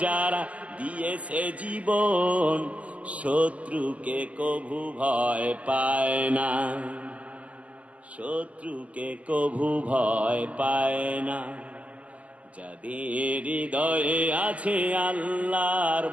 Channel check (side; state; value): left; late; 0.070 ms